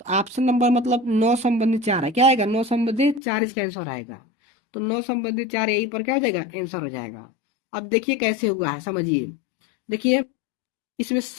ऑप्शन नंबर मतलब 9/4 है। क्या आएगा? 9/4 इसका आंसर आएगा। तो 9/4 यही पर क्या हो जाएगा? आंसर हो जाएगा। अब देखिए कैसे हुआ है, समझिए। देखिए इसमें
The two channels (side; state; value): right; drops out; at 3.2 s